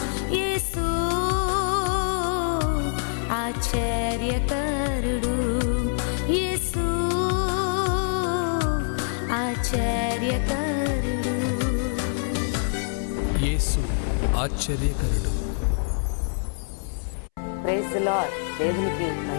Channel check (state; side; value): silent; right; 62 dB below the other